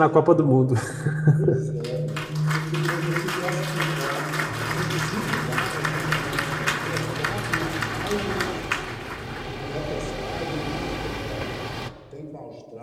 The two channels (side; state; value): both; identical; correlation 1.00